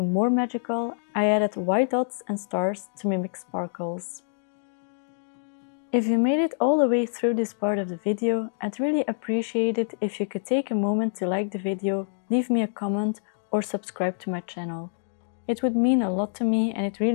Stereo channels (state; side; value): silent; right; digital silence